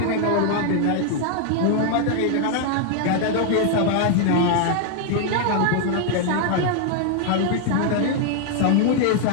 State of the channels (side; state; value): both; different; correlation 0.00